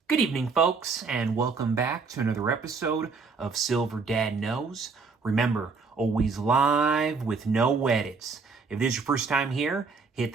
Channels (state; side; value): quieter; left; 4.7 dB